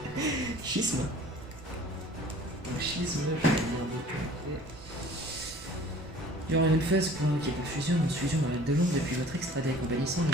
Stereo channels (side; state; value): both; normal; correlation 0.49